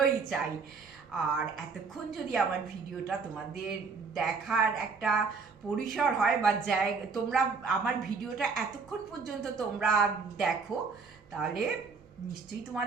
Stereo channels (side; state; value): left; quieter; 4.9 dB